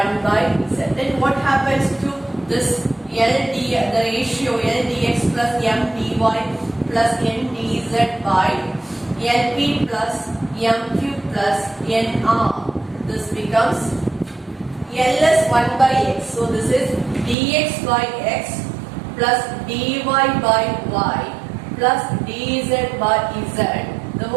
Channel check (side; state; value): left; drops out; at 17.4 s